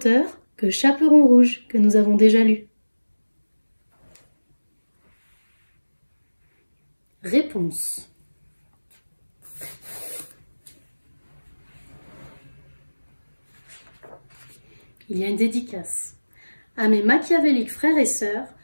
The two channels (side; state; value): both; inverted; correlation -1.00